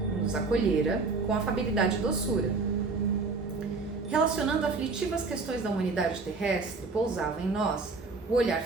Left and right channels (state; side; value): quieter; left; 4.1 dB